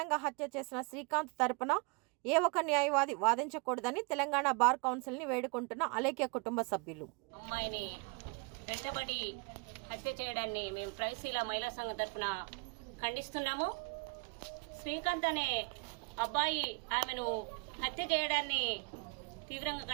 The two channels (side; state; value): left; quieter; 31.2 dB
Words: హత్య చేసిన శ్రీకాంత్ తరపున ఏ ఒక్క న్యాయవాది వాదించకూడదని తెలంగాణ బార్ కౌన్సిల్ని వేడుకుంటున్న అలేఖ్య కుటుంబ సభ్యులు. అమ్మాయిని వెంటబడి హత్య చేయడాన్ని మేము ప్రైశీల మహిళా సంఘం తరఫున ఖండిస్తున్నాము. శ్రీకాంత్ అనే అబ్బాయి ఆమెను హత్య చేయడాన్ని తీవ్రంగా